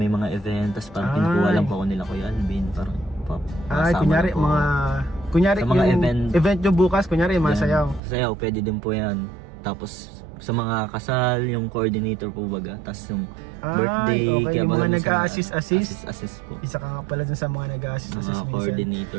mga event. Tapos parang pinukuha lang po ako nila Kuya Alvin. Parang kunyari yung event nyo bukas, kunyari mga sayaw. Sayaw, pwede din po yan. Tapos sa mga kasal, yung coordinator po baga. Tapos yung birthday, kaya yung mga nag-a-assist po. Isa ka nga pala dun sa mga nag-a-assist mga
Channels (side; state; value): left; drops out; at 8.0 s